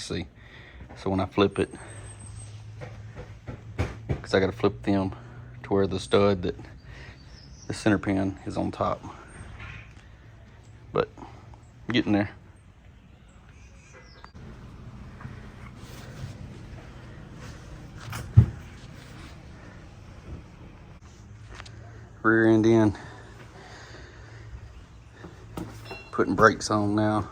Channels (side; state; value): both; identical; correlation 1.00